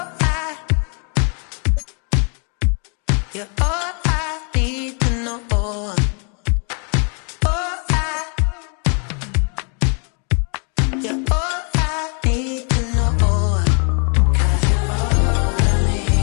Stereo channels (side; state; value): right; quieter; 39.5 dB